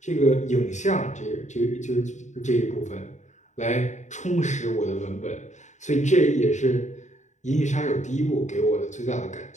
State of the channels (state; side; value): late; right; 0.34 ms